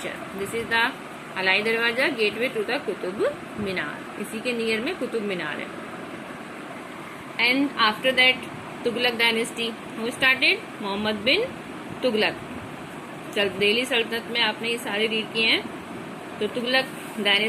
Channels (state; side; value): identical; both; correlation 1.00